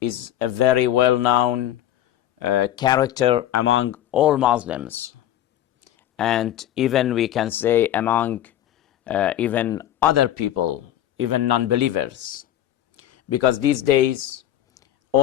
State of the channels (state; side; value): quieter; right; 12.2 dB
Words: is a very well-known character among all Muslims, and even we can say among even other people, even non-believers, because these days